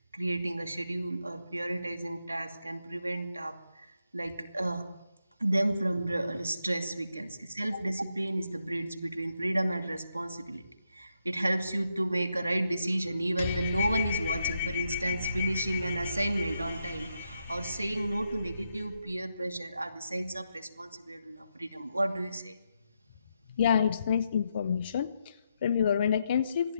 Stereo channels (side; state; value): both; inverted; correlation -0.83